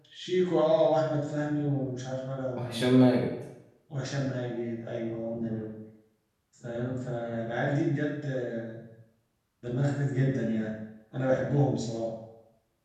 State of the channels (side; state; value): both; identical; correlation 1.00